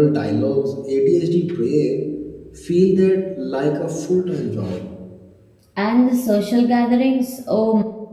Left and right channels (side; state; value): both; identical; correlation 1.00